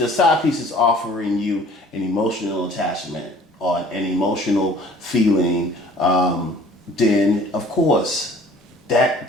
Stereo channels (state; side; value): normal; both; correlation 0.52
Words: side piece is offering you an emotional attachment or an emotional feeling, then of course that